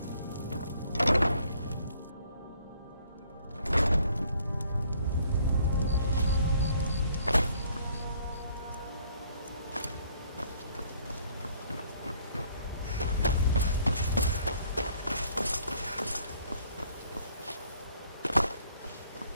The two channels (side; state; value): both; inverted; correlation -0.63